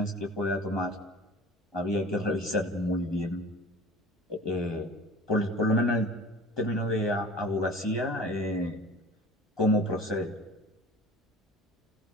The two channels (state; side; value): normal; both; correlation 0.41